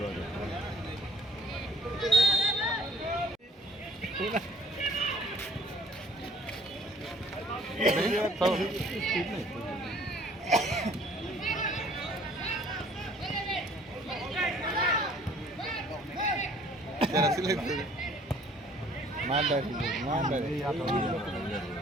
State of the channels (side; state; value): both; normal; correlation 0.57